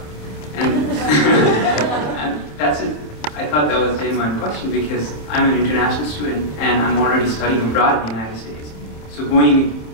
And, and that's it. I thought that was a genuine question because I'm an international student and I'm already studying abroad in the United States. So going,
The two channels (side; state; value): right; late; 27 ms